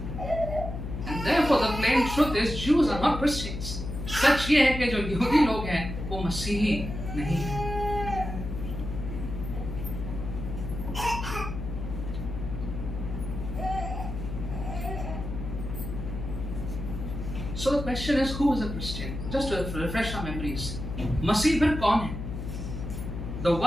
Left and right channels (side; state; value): left; noise; hum, 6 dB below the sound